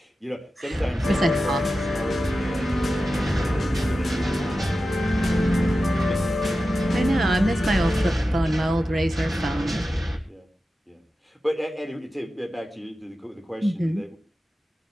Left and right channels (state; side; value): normal; both; correlation 0.93